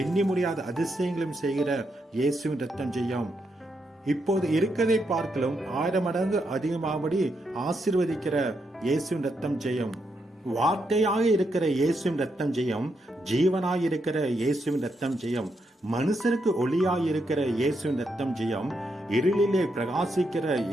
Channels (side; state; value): both; normal; correlation 0.81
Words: முடியாத அதிசயங்களையும் செய்கிற இயேசுவின் ரத்தம் ஜெயம். இப்போது இருக்கதை பார்க்கலும் 1000 மடங்கு அதிகமாகபடி ஆசீர்வதிக்கிற இயேசுவின் ரத்தம் ஜெயம். வார்த்தையாக இருக்கிற இயேசுவின் ரத்தம் ஜெயம். ஜீவனாய் இருக்கிற இயேசுவின் ரத்தம் ஜெயம். மனுஷருக்கு ஒளியாய் இருக்கிற இயேசுவின் ரத்தம் ஜெயம். இருளிலே பிரகாசிக்கிற